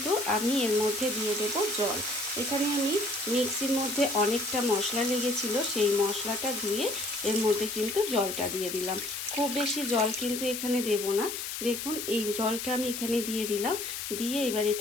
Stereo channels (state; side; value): noise; left; hiss, 5 dB below the sound